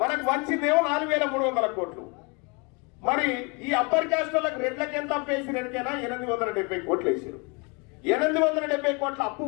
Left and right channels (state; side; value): quieter; right; 31.1 dB